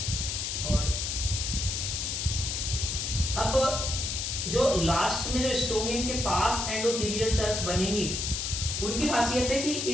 और अब जो लास्ट में जो स्टोमियम के पास एंडोथेलियल सेल्स बनेंगी, उनकी खासियत है कि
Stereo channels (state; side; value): noise; left; hiss, 2 dB below the sound